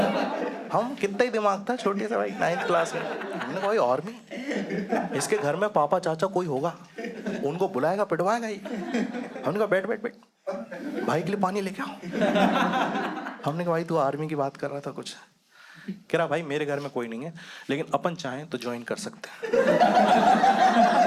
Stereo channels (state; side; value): identical; both; correlation 1.00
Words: हम कितना ही दिमाग था छोटे से भाई, 9th क्लास में। हमने कहा भाई आर्मी, इसके घर में पापा चाचा कोई होगा, उनको बुलाएगा पिटवाएगा ही। हमने कहा बैठ बैठ बैठ, भाई के लिए पानी लेके आओ। हमने कहा भाई तू आर्मी की बात कर रहा था कुछ। कह रहा भाई मेरे घर में कोई नहीं है, लेकिन अपन चाहें तो ज्वाइन कर सकते हैं।